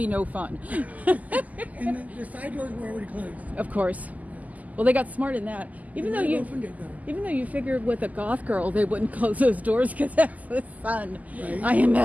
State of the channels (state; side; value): late; left; 0.077 ms